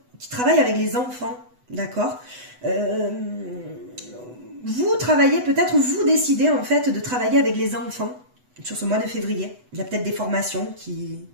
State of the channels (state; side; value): late; left; 8.1 ms